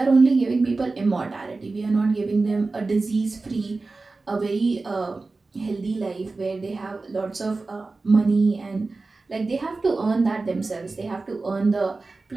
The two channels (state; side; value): quieter; left; 3.6 dB